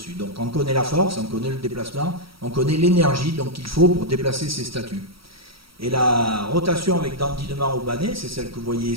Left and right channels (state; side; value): late; left; 0.75 ms